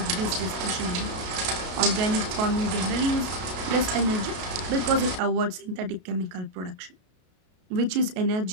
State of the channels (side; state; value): left; late; 32 ms